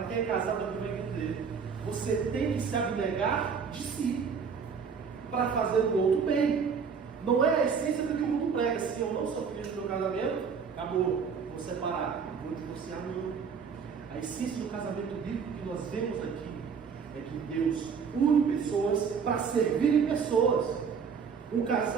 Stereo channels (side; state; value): left; quieter; 6.1 dB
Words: quem é casado aqui vai entender. Você tem que se abnegar de si para fazer o outro bem. Não é a essência do que o mundo prega. Se eu não sou feliz no meu casamento, acabou, vou separar, vou divorciar, não. A essência do casamento bíblico que nós vemos aqui é que Deus une pessoas para servirem pessoas. Um